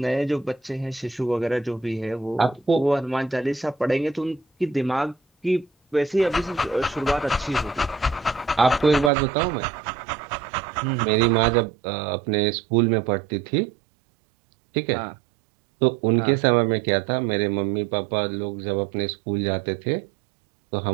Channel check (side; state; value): left; drops out; at 9.1 s